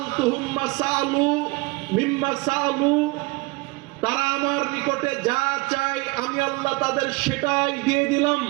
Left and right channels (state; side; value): quieter; left; 24.3 dB